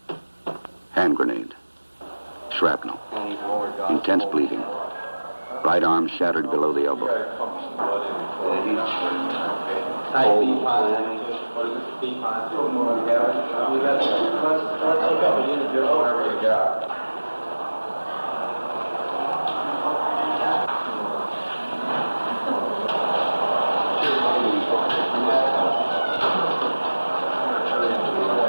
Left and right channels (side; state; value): both; inverted; correlation -1.00